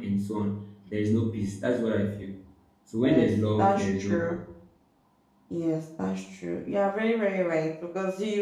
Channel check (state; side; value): identical; both; correlation 1.00